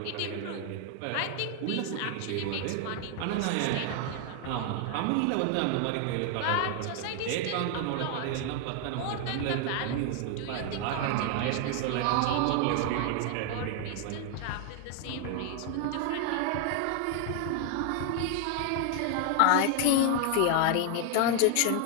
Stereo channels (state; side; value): different; both; correlation 0.00